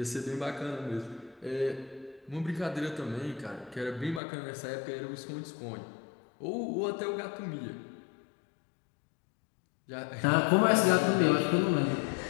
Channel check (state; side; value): drops out; right; at 4.2 s